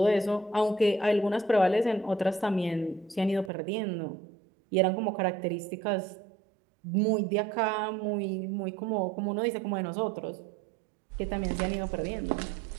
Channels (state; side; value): drops out; left; at 3.5 s